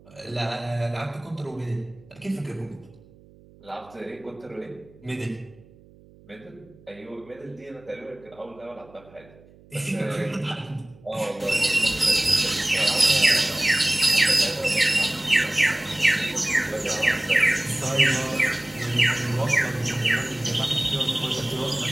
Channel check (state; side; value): noise; right; hum, 25 dB below the sound